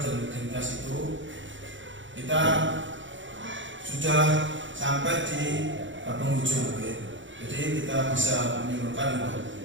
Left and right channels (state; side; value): late; left; 0.55 ms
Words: identitas itu. Kita sudah sampai di penghujung, jadi kita bisa menyimpulkan